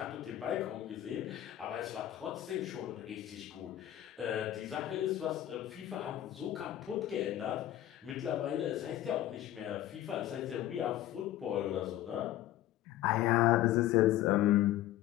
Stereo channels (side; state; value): right; quieter; 13.5 dB